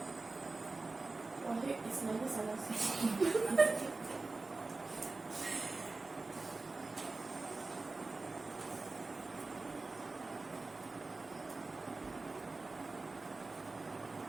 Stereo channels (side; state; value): left; quieter; 3.5 dB